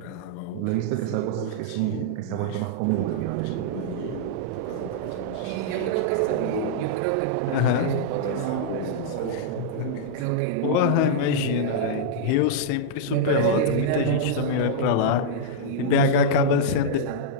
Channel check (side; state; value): both; different; correlation -0.03